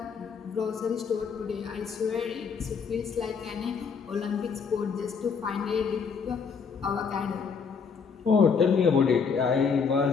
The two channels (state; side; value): quieter; right; 5.9 dB